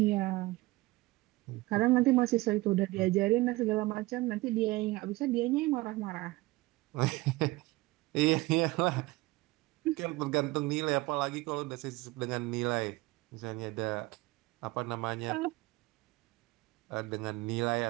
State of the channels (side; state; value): left; quieter; 20.9 dB